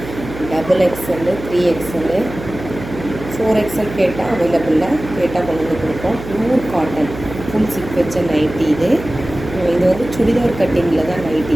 double XL, 3XL, 4XL கேட்டால் அவைலபிளில், கேட்டால் கொண்டு வந்து கொடுப்போம். பியூர் காட்டன் ஃபுல் சிப் வச்ச நைட்டி இது. இது வந்து சுடிதார் கட்டிங்கில் தான் நைட்டி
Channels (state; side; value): noise; right; hum, 12 dB below the sound